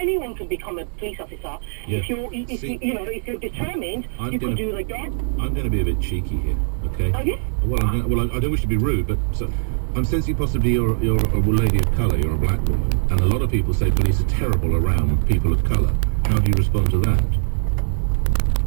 can become a police officer. Yes. If you're determined, you can do the job. I'm going to be a bit cheeky here, okay? Oh, yes? Well, I don't wish to be rude, but I'm sensing possibly you're a lady of colour, you're a black woman, and a lot of people say police are terrible around people of colour. How do you respond to that?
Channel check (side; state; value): left; silent; digital silence